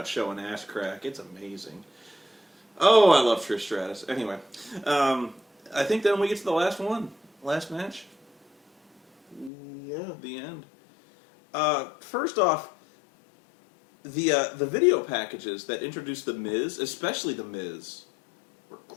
showing ass crack. It's amazing. Oh, I love Trish Stratus. Anyway, I think then we get to the last match. Yeah. The end. First off, the video packages that introduced The Miz, especially The Miz, were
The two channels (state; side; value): drops out; right; at 9.5 s